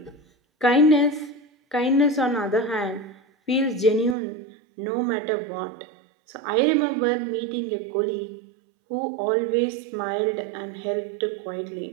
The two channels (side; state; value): left; drops out; at 4.2 s